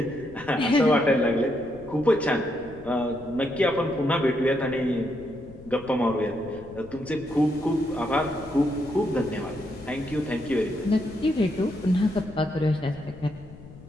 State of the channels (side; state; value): left; noise; rumble, 19 dB below the sound